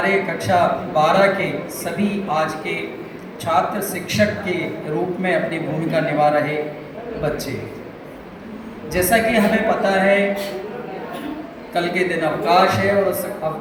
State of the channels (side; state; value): both; identical; correlation 1.00